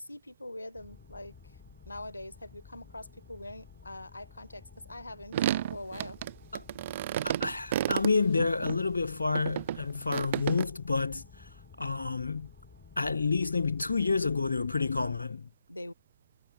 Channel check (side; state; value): both; inverted; correlation -0.78